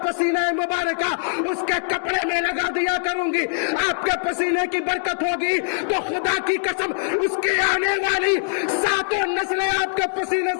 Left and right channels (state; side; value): silent; right; digital silence